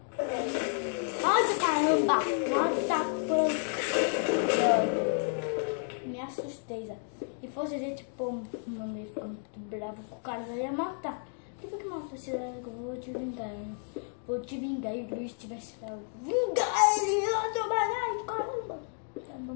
Nossa, caramba! Nossa, me assustei, já. Se fosse a gente, pô, mano, ia ficar muito bravo com o cara, já ia matar. Por que mata esse cara que eu vou te vingar? Vou te vingar e o Luiz tivesse lá. Vingar ele! Ai, caramba! Tá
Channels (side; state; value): right; silent; 57 dB below the other